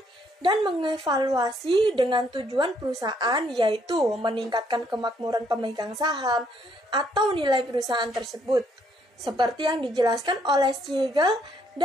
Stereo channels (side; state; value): both; normal; correlation 0.69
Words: dan mengevaluasi dengan tujuan perusahaan, yaitu meningkatkan kemakmuran pemegang saham atau nilai perusahaan tersebut. Seperti yang dijelaskan oleh Siegel